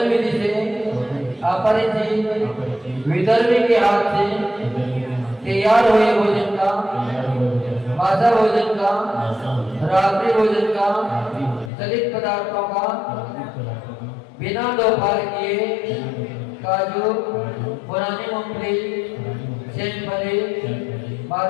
विधि से अपरिचित विधर्मी के हाथ से तैयार हुए भोजन का, मासा भोजन का, रात्रि भोजन का, चलित पदार्थों का बिना दोपहर किए काजू, पुरानी मूंगफली, सेमफली,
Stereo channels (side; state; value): right; drops out; at 11.7 s